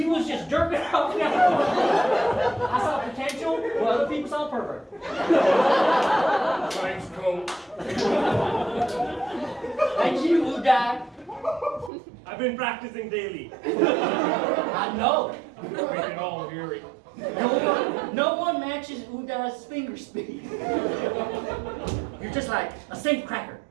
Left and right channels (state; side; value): drops out; left; at 11.9 s